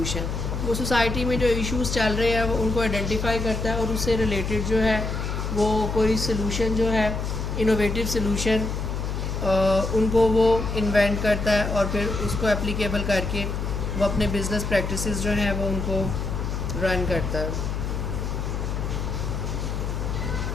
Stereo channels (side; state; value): left; noise; hum, 3 dB below the sound